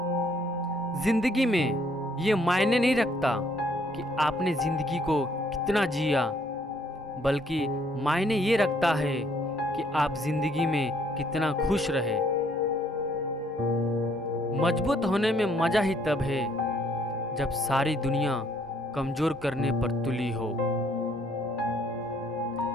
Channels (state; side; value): normal; both; correlation 0.66